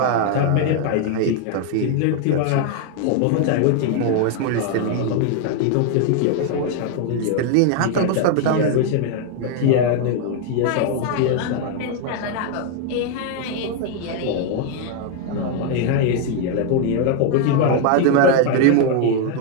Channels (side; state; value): both; different; correlation 0.00